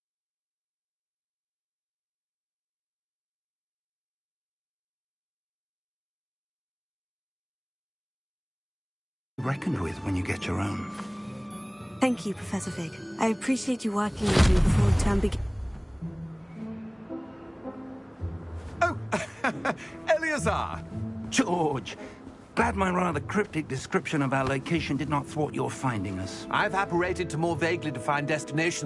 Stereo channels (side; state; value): both; identical; correlation 1.00